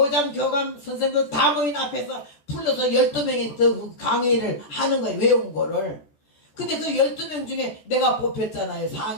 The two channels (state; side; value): late; right; 14 ms